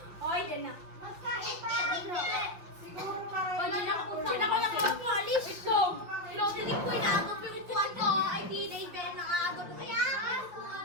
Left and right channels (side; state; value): left; late; 5.9 ms